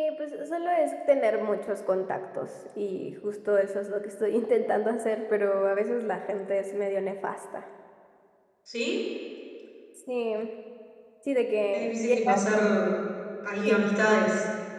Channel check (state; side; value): identical; both; correlation 1.00